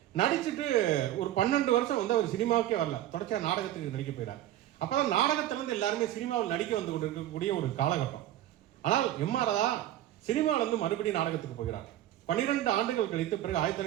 நடிச்சுட்டு ஒரு 12 வருஷம் வந்து அவர் சினிமாவுக்கே வரல, தொடர்ச்சியாக நாடகத்துக்கு நடிக்க போயிறார். அப்பதான் நாடகத்திலிருந்து எல்லாருமே சினிமாவில் நடிக்க வந்து கொண்டு இருக்கக்கூடிய ஒரு காலகட்டம். ஆனால் எம்.ஆர். தான் சினிமாவில இருந்து மறுபடியும் நாடகத்துக்கு போகிறார். 12 ஆண்டுகள் கழித்து பிறகு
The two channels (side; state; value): left; quieter; 13.1 dB